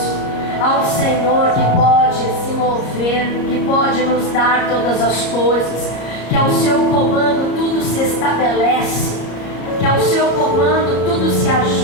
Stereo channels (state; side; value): late; right; 33 ms